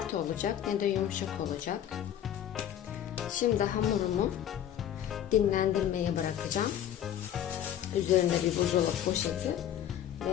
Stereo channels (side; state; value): right; quieter; 10.5 dB